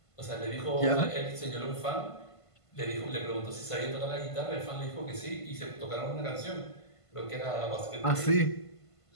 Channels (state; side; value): late; right; 1.5 ms